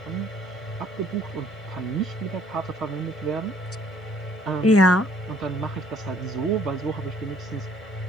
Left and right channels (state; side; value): normal; both; correlation 0.60